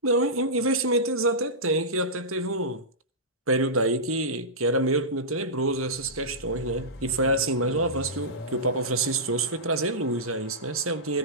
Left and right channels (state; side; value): normal; both; correlation -0.16